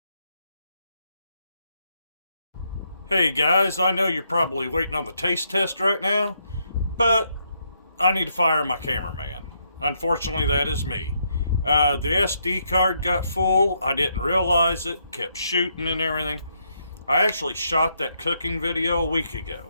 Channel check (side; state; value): both; inverted; correlation -0.76